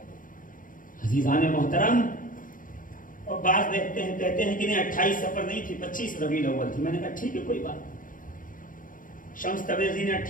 عزیزان محترم, اور بعض دیکھتے ہیں کہتے ہیں کہ نہیں 28 سفر نہیں تھی, 25 ربیع الاول تھی. میں نے کہا ٹھیک ہے کوئی بات. شمس تبریزی نے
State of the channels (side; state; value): right; late; 0.39 ms